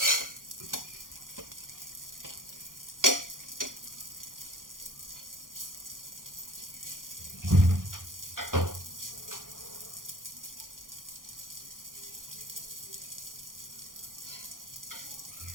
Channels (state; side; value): late; left; 0.90 ms